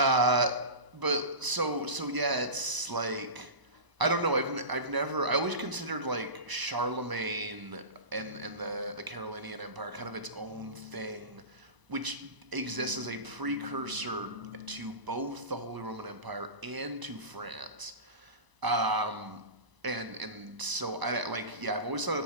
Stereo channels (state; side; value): late; left; 1.0 ms